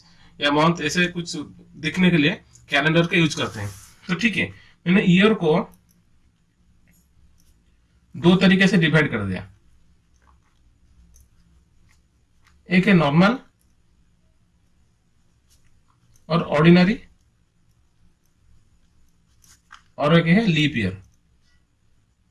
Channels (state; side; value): identical; both; correlation 1.00